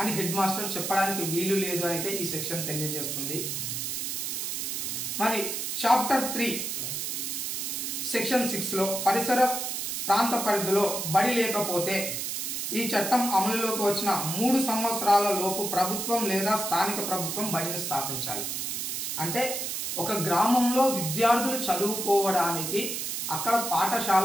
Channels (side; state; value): right; noise; hiss, 3 dB below the sound